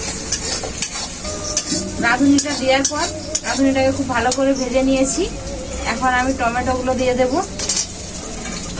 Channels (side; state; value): both; identical; correlation 1.00